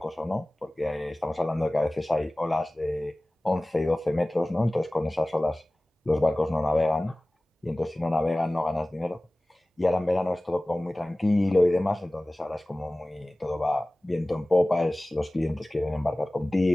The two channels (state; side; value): normal; both; correlation 0.98